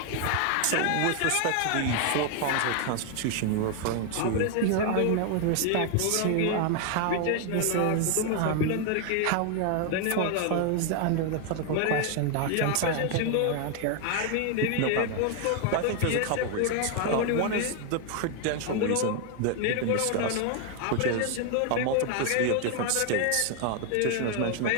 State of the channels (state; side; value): different; both; correlation 0.01